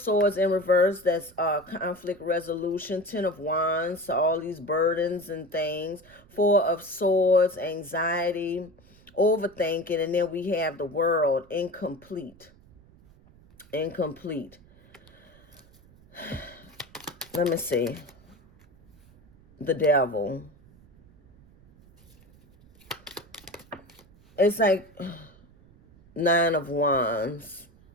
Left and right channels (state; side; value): noise; right; rumble, 27 dB below the sound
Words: in reverse, that's conflict resolution. Ten of Wands, so all these burdens and things. Four of Swords, anxiety, overthinking, and then we have the World, incomplete. Incomplete. Let me see. The Devil. It's like Nine of Wands.